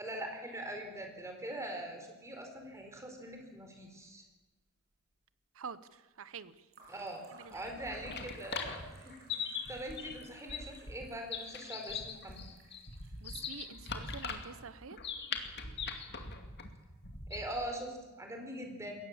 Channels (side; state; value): both; normal; correlation 0.27